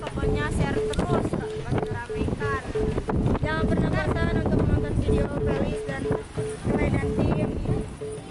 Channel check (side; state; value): both; identical; correlation 1.00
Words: share terus, masih ramekan. Jangan pernah bosan untuk menonton video Felis dan Clay dan tim.